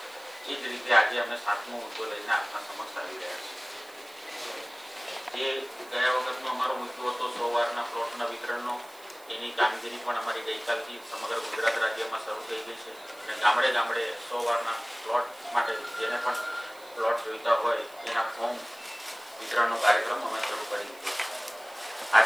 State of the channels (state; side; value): noise; right; hiss, 24 dB below the sound